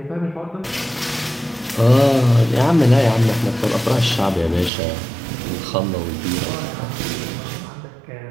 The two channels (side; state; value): left; drops out; at 4.7 s